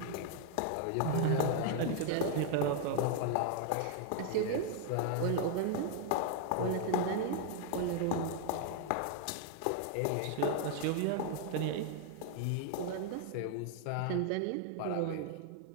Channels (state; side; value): different; both; correlation 0.00